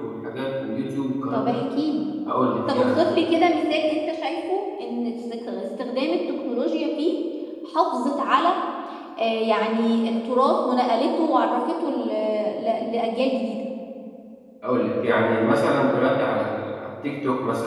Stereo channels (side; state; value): both; identical; correlation 1.00